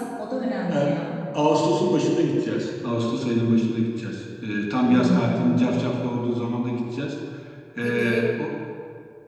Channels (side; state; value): both; identical; correlation 1.00